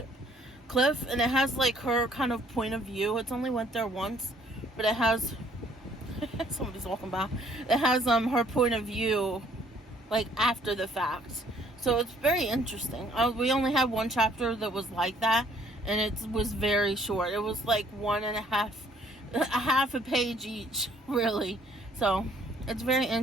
and it has like her kind of point of view. It's only went there once, but it has somebody's walking by. It has her point of view like after the fact. So it's very interesting. We only had one chapter that was like that, and it was very short. It was like half a page each, really. So it's very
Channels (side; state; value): both; normal; correlation 0.62